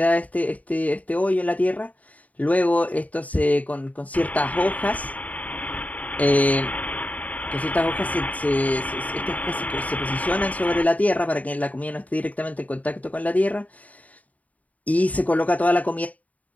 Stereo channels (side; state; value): right; late; 0.072 ms